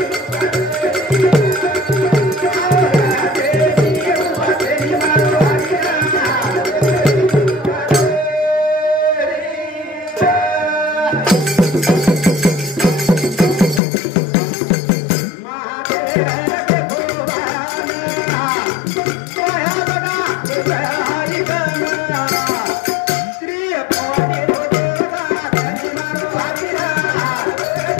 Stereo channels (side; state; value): right; drops out; at 13.8 s